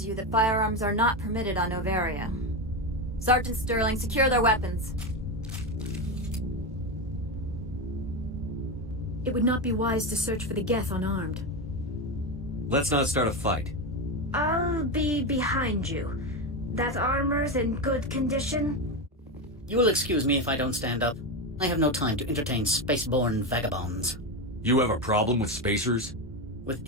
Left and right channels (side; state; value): both; normal; correlation 0.14